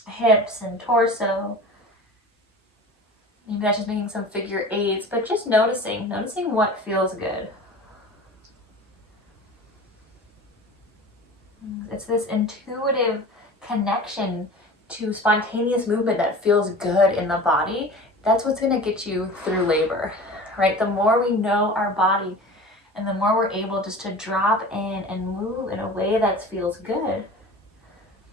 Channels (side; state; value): both; normal; correlation 0.37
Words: hips and torso. Maybe that's just making some figure eights, but just noticing what feels good. It's this intuitive connection to spontaneous movement that feels good in the body. That's what's going to get you through labor, right? The more we know our body and the more we're able just to drop in and move in a way that feels good,